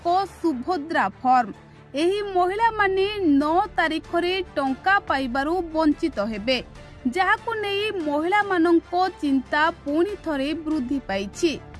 सुभद्रा फॉर्म। एही महिला माने 9 तारिख रे टंका पाइबारु वंचित हेबे, जाहाकु नहीं महिला मानंको चिंता पुणी थरे वृद्धि पाइछि।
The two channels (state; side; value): identical; both; correlation 1.00